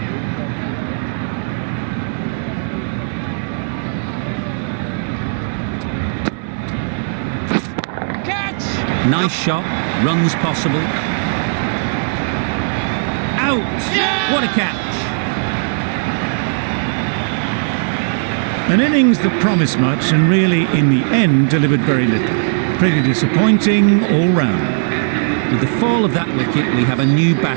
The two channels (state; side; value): silent; left; 68 dB below the other